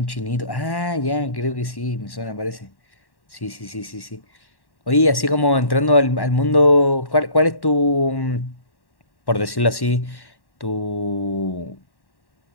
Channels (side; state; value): right; late; 1.1 ms